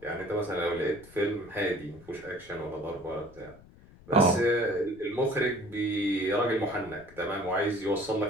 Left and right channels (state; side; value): noise; left; rumble, 22 dB below the sound